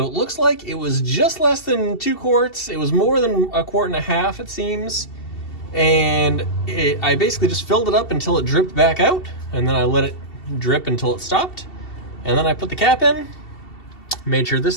it looks like it was just less than 2 quarts. It was more than 1.5 quarts, it seems. And I basically just filled it up until it dripped back out, and then I let it drip until it stopped. And then I put the cap in, made sure this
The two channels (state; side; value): late; right; 2.7 ms